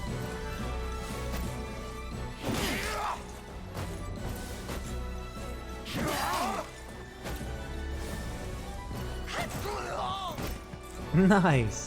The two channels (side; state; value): both; identical; correlation 1.00